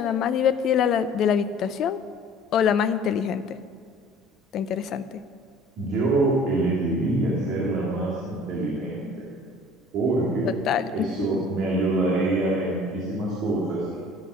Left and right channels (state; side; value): normal; both; correlation 0.49